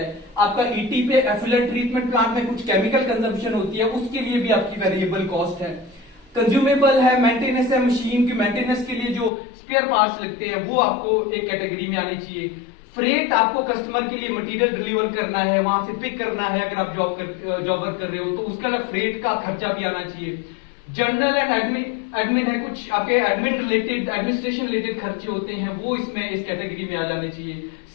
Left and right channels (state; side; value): drops out; right; at 9.3 s